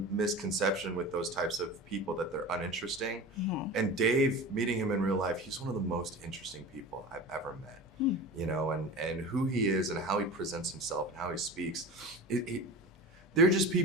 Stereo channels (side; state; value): both; normal; correlation 0.33